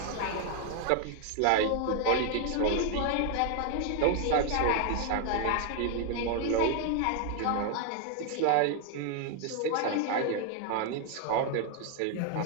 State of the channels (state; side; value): different; both; correlation 0.00